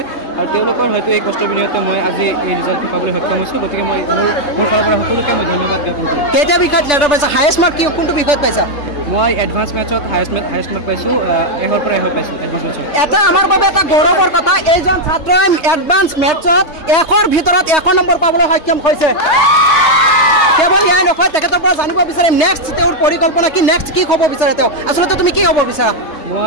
আৰু তেওঁলোকৰ হয়তো এই কষ্টৰ বিনিময়তে মই আজি এই ৰিজাল্টটো পাবলৈ সক্ষম হৈছোঁ। গতিকে মই মোৰ ফালৰ পৰা সকলোকে মই ধন্যবাদ জ্ঞাপন কৰিছোঁ। কেইটা বিষয়ত লেটাৰ পাইছা? হায়েষ্ট মাৰ্ক কোনটো বিষয়ত পাইছা? মই এডভান্স মেথছত হায়েষ্ট মাৰ্ক পাইছোঁ, 100ৰ পৰা 100 পাইছোঁ এডভান্স মেথছত। এটা আমাৰ বাবে এটা গৌৰৱৰ কথা, এইজন ছাত্ৰই এডভান্স মেথছত 100ৰ ভিতৰত 100 নম্বৰ পাবলৈ সক্ষম হৈছে। কেৱল এয়াই নহয়, তেখেতৰ পৰা জানিব বিচাৰিম নেক্সট তেওঁৰ পৰিকল্পনা কি, নেক্সট কি হ'ব বিচাৰে তেওঁ, আচলতে তুমি কি হ'ব বিচাৰা?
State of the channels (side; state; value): right; late; 3.3 ms